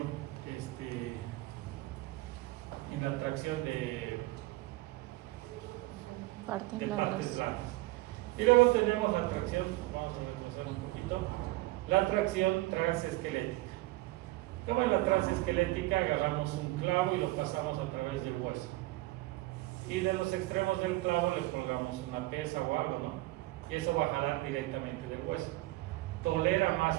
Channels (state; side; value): quieter; left; 19.7 dB